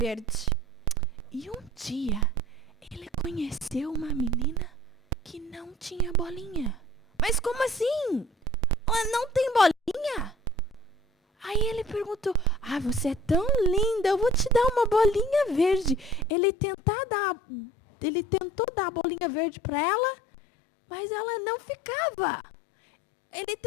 E um dia, ele conheceu uma menina que não tinha bolinha. Mas como assim? Ela não tem bolinha? Aí ele perguntou: você é tão linda, eu vou te dar uma bolinha verde. Ele tentou dar a bolinha verde para ela, mas ela não ficava. Ele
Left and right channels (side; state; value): right; drops out; at 16.3 s